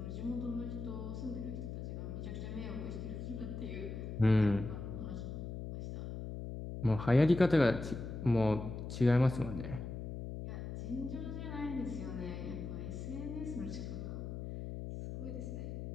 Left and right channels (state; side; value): noise; left; hum, 6 dB below the sound